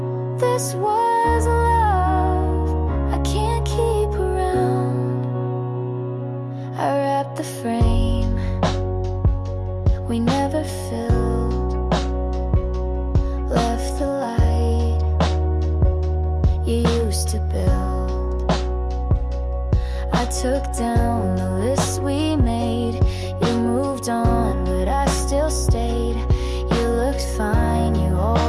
used to build. I took down the list we made. You moved on, but I still stayed. You looked fine, you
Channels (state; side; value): identical; both; correlation 1.00